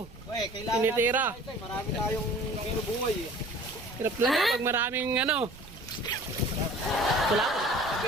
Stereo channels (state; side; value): noise; right; rumble, 20 dB below the sound